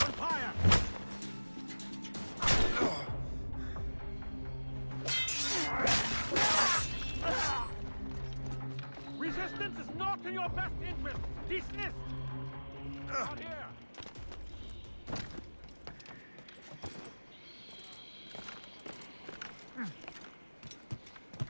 fire! Resistance is not in your best interest! Dismissed! Not here!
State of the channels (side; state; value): both; inverted; correlation -1.00